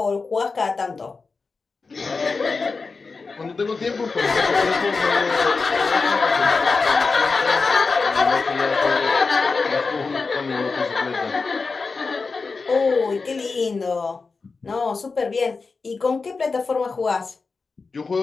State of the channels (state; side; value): quieter; right; 4.4 dB